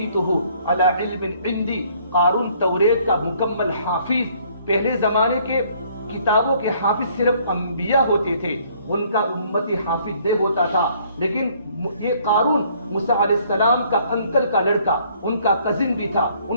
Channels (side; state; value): both; inverted; correlation -0.62